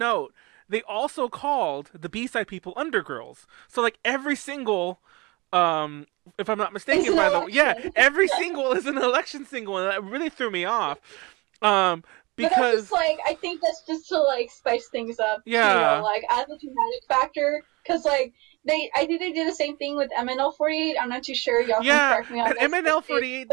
they also called the B side people Undergirls. So like every single, if I'm not mistaken, by the way, every single is an election single, and that really threw me off. Because just, like, I think that's just to like spice things up, like as a dramatic factor. Because like I think they did the same thing with MNL48. I'm not too sure. Y'all can correct me on this. MNL48,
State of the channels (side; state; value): left; quieter; 24.7 dB